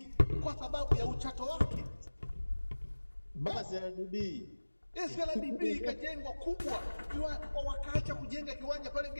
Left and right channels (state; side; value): inverted; both; correlation -1.00